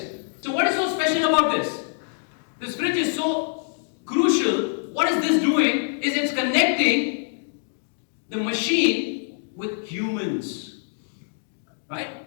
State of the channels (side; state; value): right; silent; digital silence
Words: So what is so special about this? This fridge is so crucial. What is this doing? Is it's connecting the machine with humans. Right?